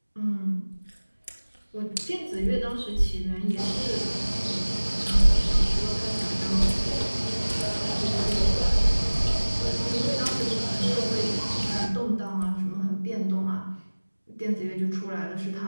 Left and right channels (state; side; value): inverted; both; correlation -1.00